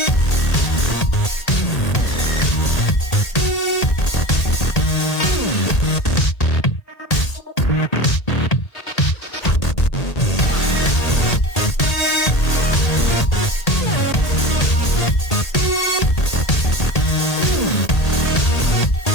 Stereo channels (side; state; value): right; late; 1.8 ms